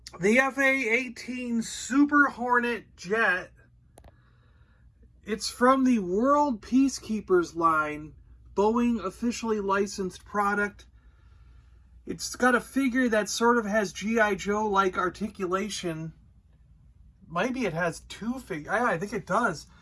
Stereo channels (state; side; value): identical; both; correlation 1.00